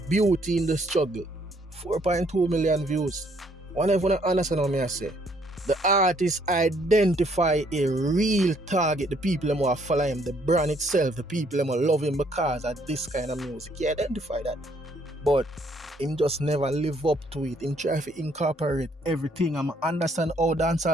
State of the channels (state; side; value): normal; both; correlation 0.67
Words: Beauty in the Struggle. 4.2 million views. Whenever you understand what I say, the artist identify a real target, the people who are follow him, the brand itself, the people who love him because of this kind of music. He identify that. But him just never live up to it. Him try to incorporate everything. I understand how